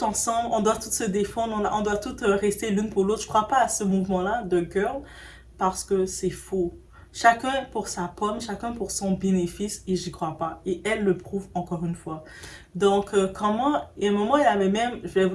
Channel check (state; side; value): identical; both; correlation 1.00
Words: ensemble, on doit toutes se défendre, on doit toutes rester l'une pour l'autre. Je crois pas à ce mouvement-là de Girl, parce que c'est faux. Chacun pour sa pomme, chacun pour son bénéfice, et j'y crois pas. Et elle le prouve encore une fois. Donc, et à un moment, elle avait même, je vais vous